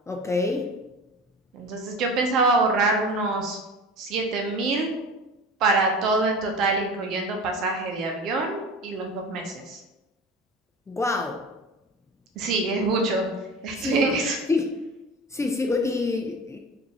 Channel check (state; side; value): normal; both; correlation 0.34